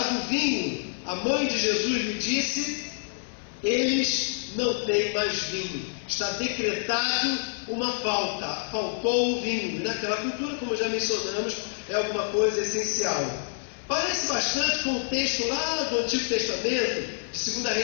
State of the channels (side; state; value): right; silent; 58 dB below the other